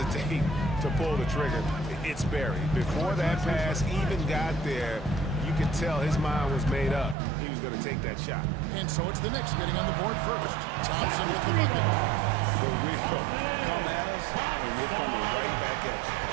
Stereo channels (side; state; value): left; drops out; at 7.2 s